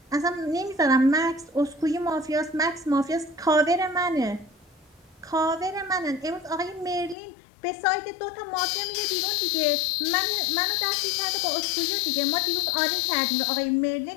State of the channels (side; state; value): right; drops out; at 7.2 s